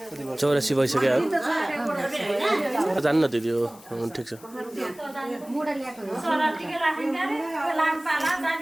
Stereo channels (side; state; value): left; noise; hiss, 23 dB below the sound